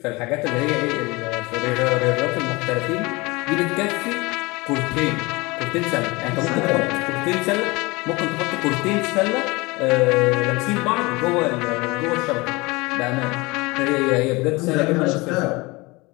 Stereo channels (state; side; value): quieter; right; 23.9 dB